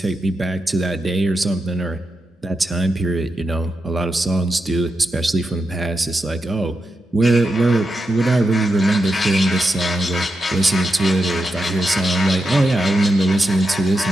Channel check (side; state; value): both; normal; correlation 0.87